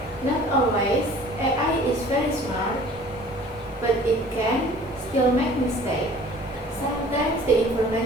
Not always, AI is very smart, but it can still make mistakes. Sometimes the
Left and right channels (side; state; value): both; normal; correlation 0.49